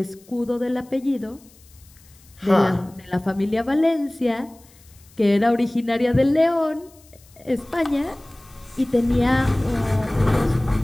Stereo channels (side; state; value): left; noise; hiss, 27 dB below the sound